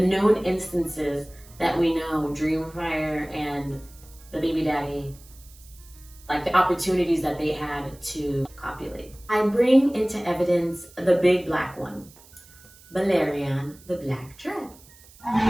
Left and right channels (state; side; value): noise; right; hiss, 24 dB below the sound